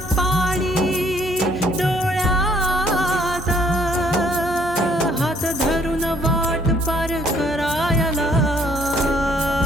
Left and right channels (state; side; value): normal; both; correlation 0.64